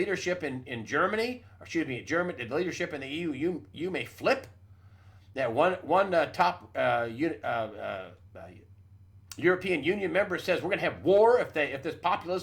in Germany, the leadership in the EU may flip. That one top European Union member says we're going to have war if this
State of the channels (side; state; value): both; identical; correlation 1.00